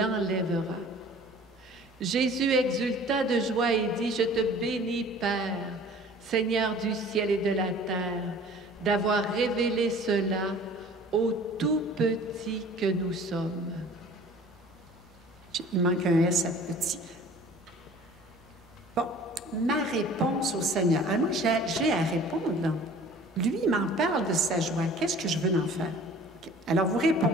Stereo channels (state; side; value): normal; both; correlation 0.48